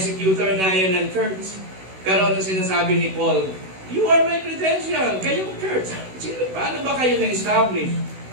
na yan ng church. Pero ano sinasabi ni Paul? You are my credential. Kayong church. Paano ba kayo na-establish?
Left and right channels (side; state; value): left; late; 16 ms